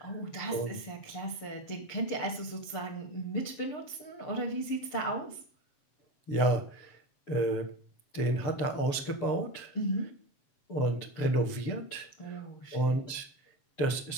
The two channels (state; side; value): late; right; 6.8 ms